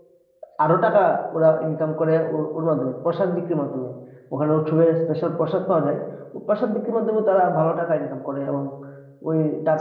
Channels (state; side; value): identical; both; correlation 1.00